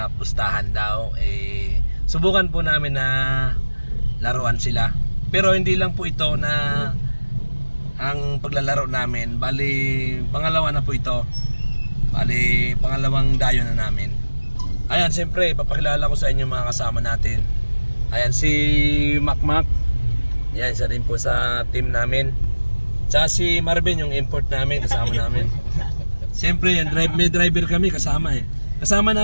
pustahan daw. Subukan po namin na laruan sila. Pero hindi lang po ito na ang paglalaro namin, bali pangalawa na po ito. Bali pangalawang dayo na namin. Ayan, siyempre papakilala ko sa inyo mga kasama natin. Ayan si Macmac. Yan, isa rin po sa team namin. Tsaka si Marvin, yung import namin, kasama namin. Siyempre yan, may driver kami kasama Kasama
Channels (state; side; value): inverted; both; correlation -1.00